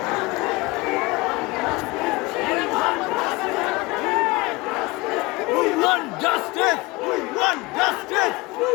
Justice! We want justice!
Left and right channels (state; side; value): quieter; right; 23.5 dB